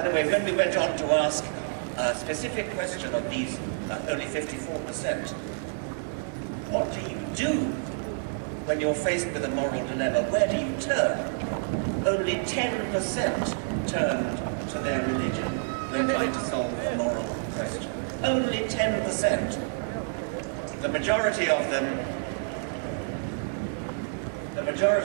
the way, when we went on to ask a specific question of these, only 54%, what do you do when you're faced with a moral dilemma? Where do you turn? Only 10% turned to their religion when trying to solve a moral question. Only 10%. The majority of them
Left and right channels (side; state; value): left; silent; digital silence